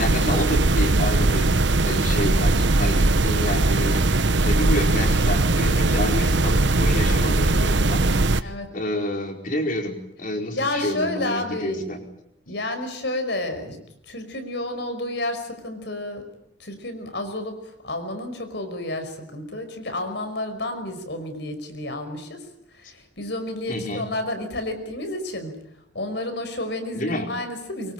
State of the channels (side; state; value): both; normal; correlation 0.54